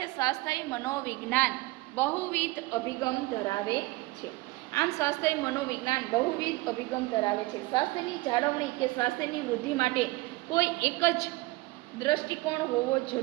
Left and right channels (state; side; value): quieter; left; 21.3 dB